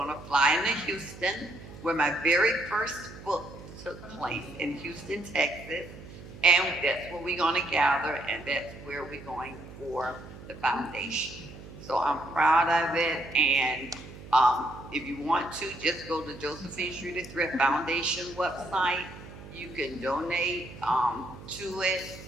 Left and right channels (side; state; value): right; noise; hum, 15 dB below the sound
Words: to fly into Houston, where my very first book took place in Houston, Texas. And that's where we're going to gather, and that's where we're going for the foundation. So I'm proud of it, and if you want to, just go to Josephine Street at Thrift Foundation website. You can donate to it,